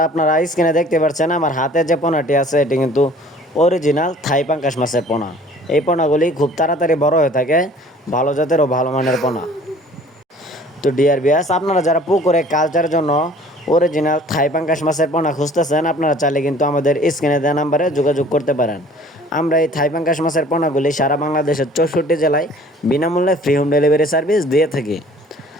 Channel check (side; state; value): both; normal; correlation 0.51